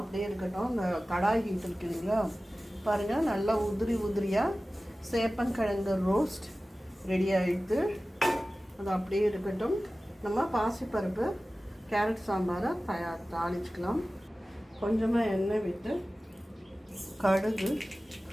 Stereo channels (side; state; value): both; normal; correlation 0.96